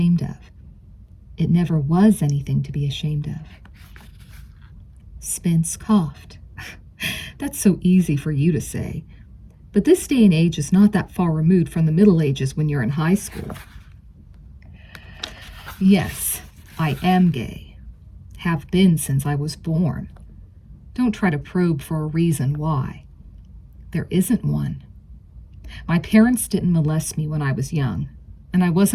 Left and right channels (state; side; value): identical; both; correlation 1.00